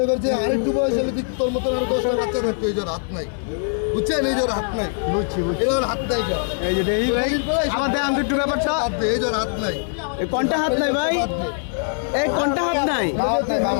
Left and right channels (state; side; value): silent; right; digital silence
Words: করছে আরেকটু বয়স হলে তোর মতন আরো 10টা বাচ্চা থাকতো। এই যার হাত নাই, বুঝছেন? এই যার হাত নাই, বুঝছি এর হাত নাই। এই যে আমাদের আমি একটু ব্যাপারটা এই যার হাত নাই, এই কোনটা হাত নাই ভাই? এই কোনটা হাত নাই?